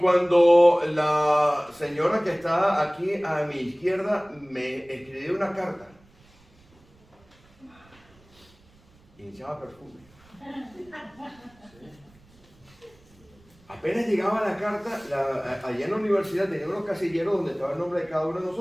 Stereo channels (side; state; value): right; noise; rumble, 29 dB below the sound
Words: la señora que está aquí a mi izquierda me escribió una carta, y me echaba perfume. Apenas llegaba la carta, allá en la universidad tenía unos casilleros donde estaba el nombre de cada uno de